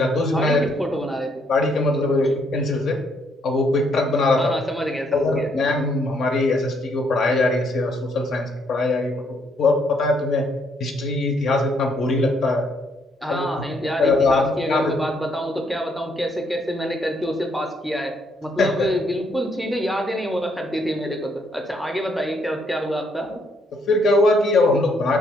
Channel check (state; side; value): normal; both; correlation 0.71